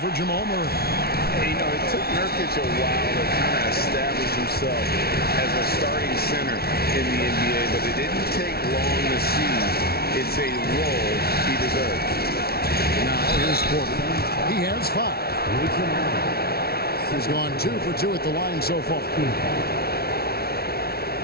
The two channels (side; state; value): right; late; 0.45 ms